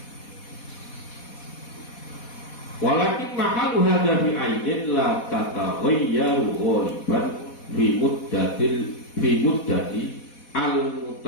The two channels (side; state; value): right; late; 4.1 ms